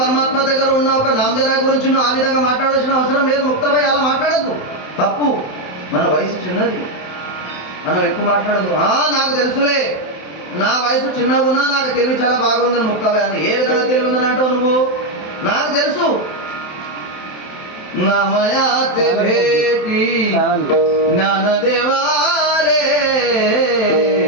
దగ్గర ఉన్న ఒక నామదేవ్ రాయ్ గురించి నువ్వు ఆ విధంగా మాట్లాడాల్సిన అవసరం లేదు. ముక్తాబాయి అలా మాట్లాడద్దు, తప్పు. మన వయసు చిన్నది, మనం ఎక్కువ మాట్లాడదు. నాకు తెలుసులే, నా వయసు చిన్నగా ఉన్నా నాకు తెలివి చాలా బాగుందని ముక్తాబాయి అన్న. ఏ విధంగా తెలివి ఉందని అంటావు నువ్వు? నాకు తెలుసు. నమయాతే భేటి జ్ఞానదేవాలే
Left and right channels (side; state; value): right; late; 27 ms